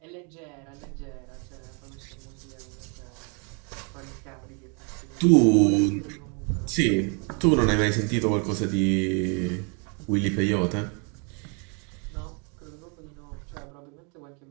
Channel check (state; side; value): quieter; left; 35.9 dB